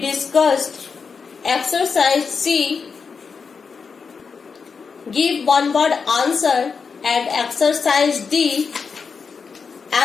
exercise C. Give one word answer, and exercise D.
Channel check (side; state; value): right; quieter; 5.4 dB